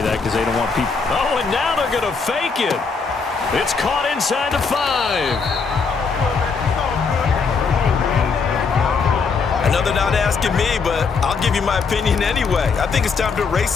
because they don't want people. Oh, and now they're going to fake it. It's caught inside the 5. Well, they're not asking me, but I'll give you my opinion anyway. I think it's time to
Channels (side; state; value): right; quieter; 5.0 dB